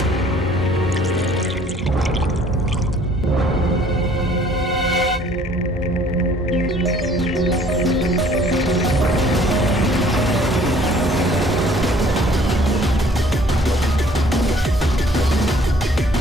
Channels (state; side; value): normal; both; correlation 0.57